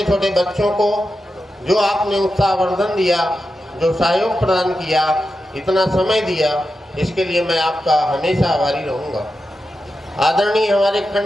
छोटे बच्चों को जो आपने उत्साहवर्धन दिया, जो सहयोग प्रदान किया, इतना समय दिया, इसके लिए मैं आपका हमेशा आभारी रहूँगा। आदरणीय हमारे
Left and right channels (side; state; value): both; normal; correlation 0.90